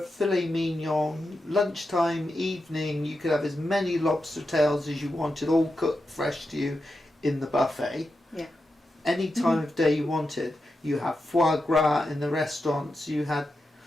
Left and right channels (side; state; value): both; normal; correlation 0.88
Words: filet mignon, lunchtime, evening. You could have as many lobster tails as you wanted, all cooked fresh to you in the buffet. Yeah. Any time of day you wanted. You have foie gras in the restaurants. You had.